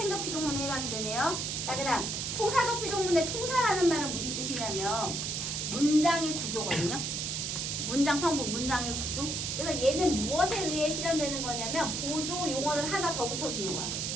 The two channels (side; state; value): right; noise; hiss, 2 dB below the sound